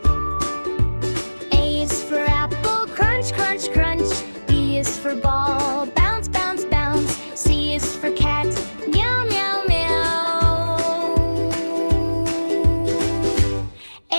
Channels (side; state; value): both; inverted; correlation -1.00